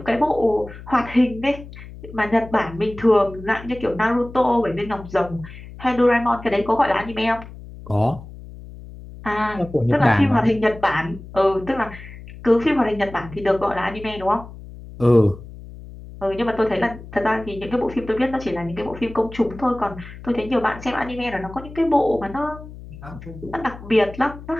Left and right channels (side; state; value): left; noise; hum, 15 dB below the sound